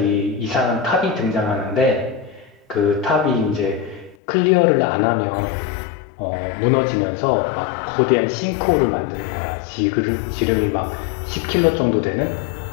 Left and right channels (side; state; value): right; drops out; at 4.2 s